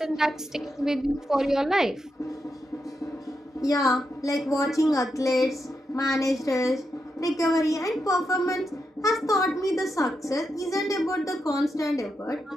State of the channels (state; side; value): normal; both; correlation 0.85